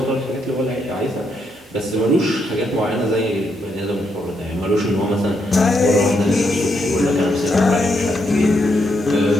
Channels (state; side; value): normal; both; correlation 0.78